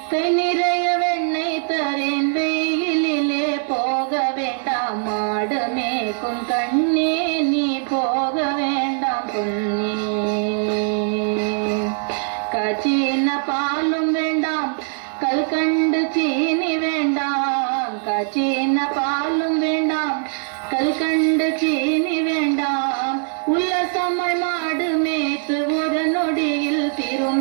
கை நிறைய வெண்ணெய் தரேன். வெயிலிலே போக வேண்டாம் மாடமேக்கும் கண்ணே நீ போக வேண்டாம் பொன்னே. காய்ச்சின பாலும் வேண்டாம் கல்கண்டு சீனி வேண்டாம். காய்ச்சின பாலும் வேண்டாம் கல்கண்டு சீனி வேண்டாம். உல்லசமாய் மாடு மேய்த்து ஒரு நொடியில்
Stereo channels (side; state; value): left; silent; digital silence